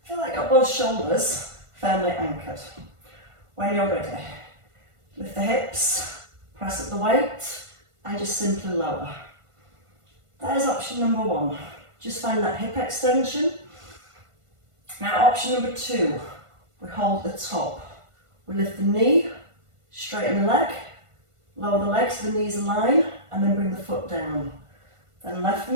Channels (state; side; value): late; left; 1.5 ms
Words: Feel like you've got both shoulders firmly anchored. When you're ready, lift the hips, press up the weight, and just simply lower. There's option number 1. Just find that hip extension. Now option number 2, we hold the top. We lift the knee, straighten the leg, lower the leg so the knees align, and then bring the foot down. Then left